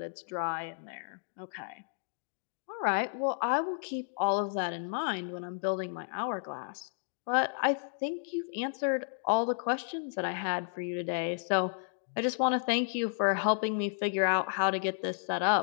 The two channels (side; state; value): right; silent; digital silence